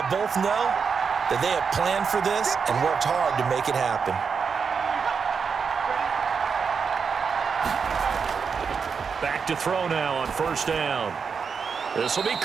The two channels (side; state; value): left; quieter; 5.9 dB